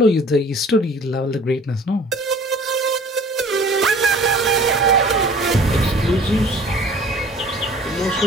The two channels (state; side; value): normal; both; correlation 0.49